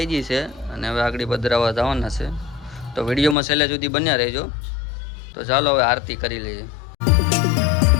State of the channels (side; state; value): right; drops out; at 3.4 s